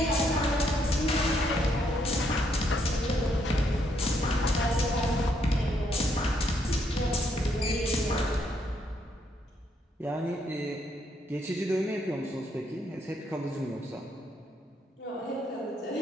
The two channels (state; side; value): normal; both; correlation 0.73